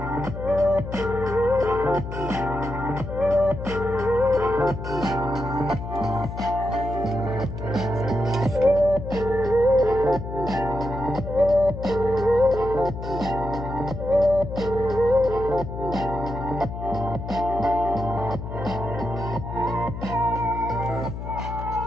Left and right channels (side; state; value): left; noise; hum, 7 dB below the sound